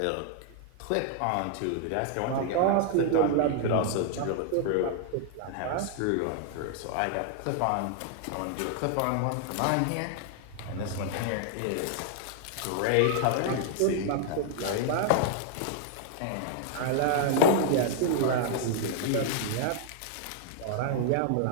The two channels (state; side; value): different; both; correlation 0.00